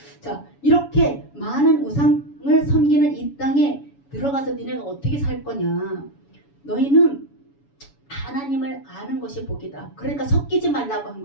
자, 이렇게 많은 우상을 섬기는 이 땅에 들어가서 니네가 어떻게 살 거냐. 너희는 하나님을 아는 것이 복이다. 그러니까 섞이지 말라고 한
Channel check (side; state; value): right; late; 7.1 ms